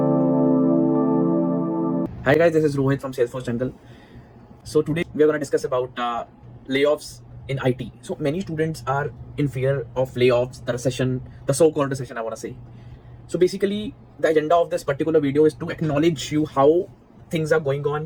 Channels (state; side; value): identical; both; correlation 1.00